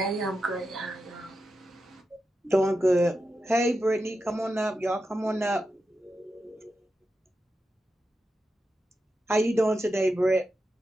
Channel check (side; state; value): both; normal; correlation 0.89